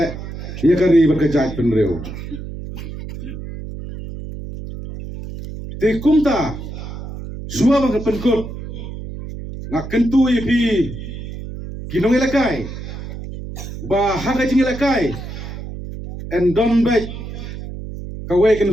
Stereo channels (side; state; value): right; noise; hum, 10 dB below the sound